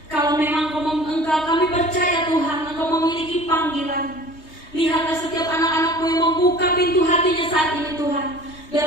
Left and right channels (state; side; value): late; right; 3.2 ms